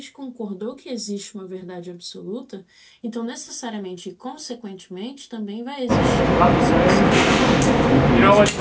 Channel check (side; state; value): both; identical; correlation 1.00